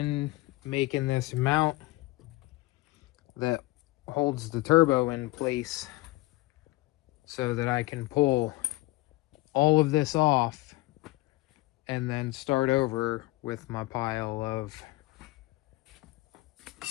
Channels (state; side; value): quieter; right; 20.1 dB